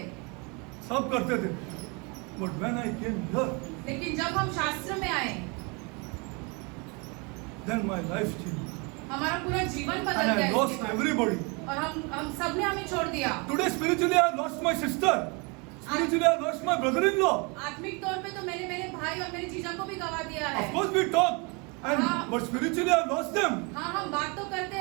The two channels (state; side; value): quieter; left; 30.7 dB